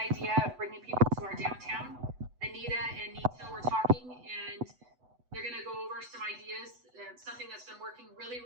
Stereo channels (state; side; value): late; left; 8.0 ms